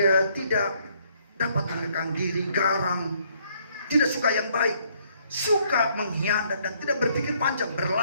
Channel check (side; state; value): both; inverted; correlation -0.67